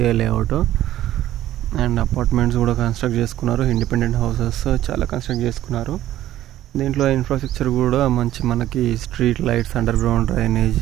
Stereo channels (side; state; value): left; quieter; 13.4 dB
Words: లేఅవుట్. అండ్ అపార్ట్మెంట్స్ కూడా కన్స్ట్రక్ట్ చేసుకున్నారు. ఇండిపెండెంట్ హౌసెస్ చాలా కన్స్ట్రక్ట్ చేసుకున్నారు. దీంట్లో ఇన్ఫ్రాస్ట్రక్చర్ కూడా మంచి, మనకి street lights, under ground drainage,